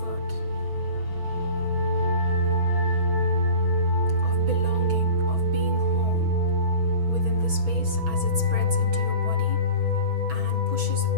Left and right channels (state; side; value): late; left; 6.2 ms